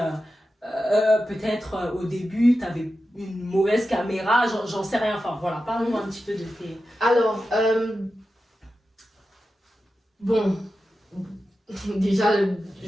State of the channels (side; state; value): both; normal; correlation 0.91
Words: peut-être au début tu avais une mauvaise caméra, j'en sais rien, enfin voilà, parle-nous un petit peu de tes... Alors, bon, déjà,